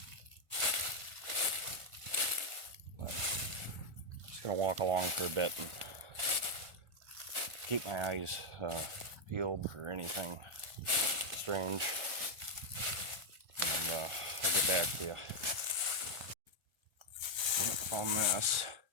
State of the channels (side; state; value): left; late; 1.4 ms